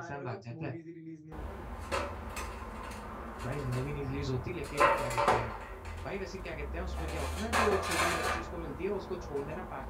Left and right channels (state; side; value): identical; both; correlation 1.00